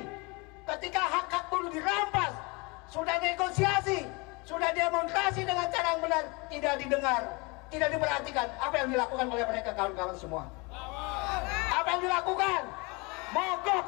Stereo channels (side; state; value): right; quieter; 28.0 dB